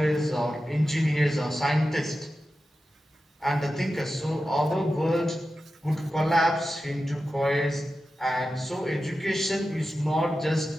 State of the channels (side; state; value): both; normal; correlation 0.92